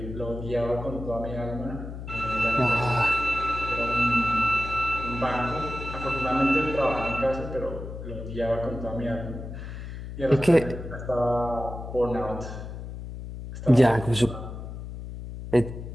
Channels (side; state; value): left; noise; hum, 9 dB below the sound